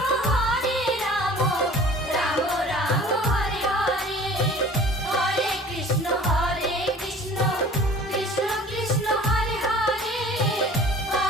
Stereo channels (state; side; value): normal; both; correlation 0.46